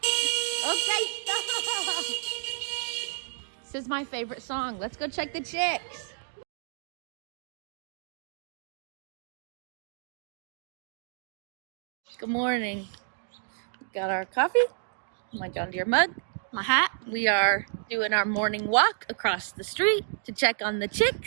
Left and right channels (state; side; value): silent; left; digital silence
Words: Okay, stop. This is my favorite song. Let's go check the chicks. Good morning. Got our coffee, my John Deere mug, my hat. We are doing our morning walk across the street to check on the